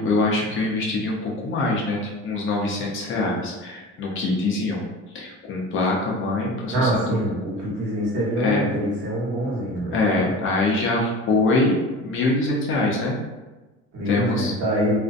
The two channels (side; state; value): both; normal; correlation 0.36